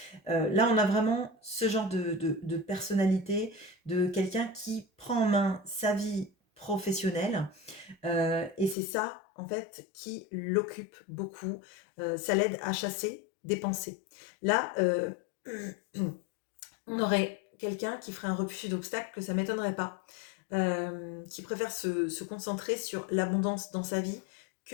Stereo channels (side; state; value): right; drops out; at 8.8 s